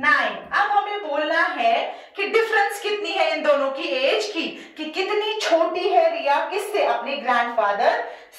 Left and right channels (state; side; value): identical; both; correlation 1.00